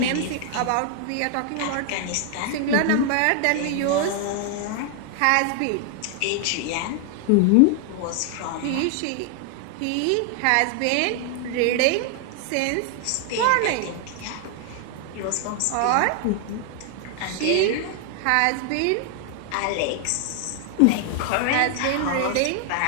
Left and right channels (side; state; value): both; different; correlation 0.00